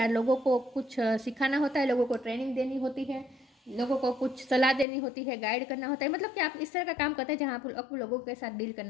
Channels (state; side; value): drops out; right; at 4.9 s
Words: लोगों को कुछ सिखाना होता है, लोगों को ट्रेनिंग देनी होती है। लोगों को कुछ सलाह देनी होती है, गाइड करना होता है, मतलब कि आप इस तरह का काम करते हैं जहाँ आपको लोगों के साथ डील